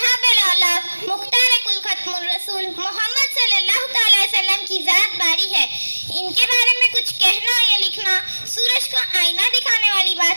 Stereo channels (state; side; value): inverted; both; correlation -1.00